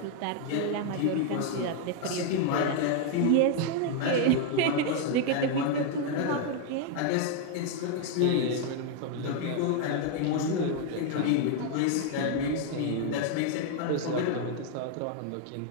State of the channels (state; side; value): different; both; correlation 0.00